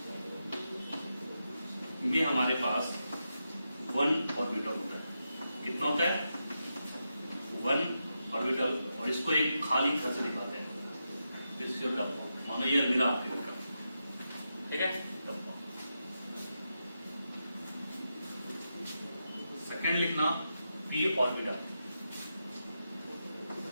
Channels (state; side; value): inverted; both; correlation -0.87